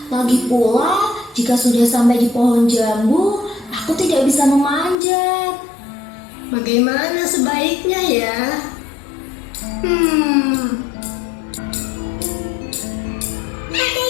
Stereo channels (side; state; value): right; drops out; at 5.0 s